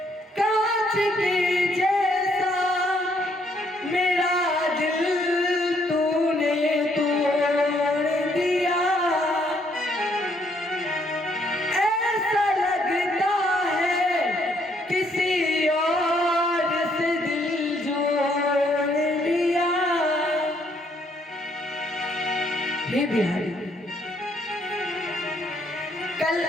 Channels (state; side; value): normal; both; correlation 0.69